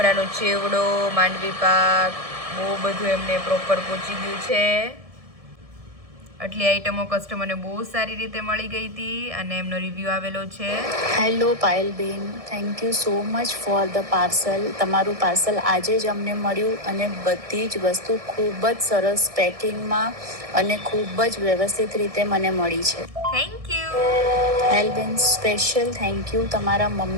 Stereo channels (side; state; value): left; late; 1.7 ms